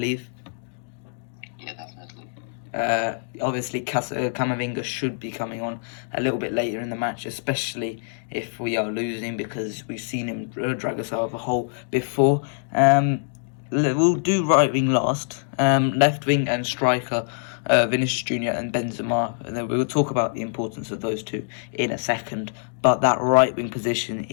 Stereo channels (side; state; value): right; silent; digital silence